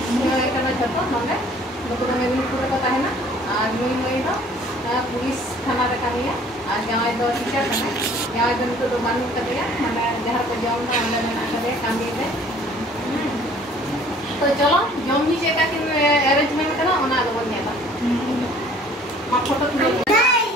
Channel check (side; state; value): both; normal; correlation 0.53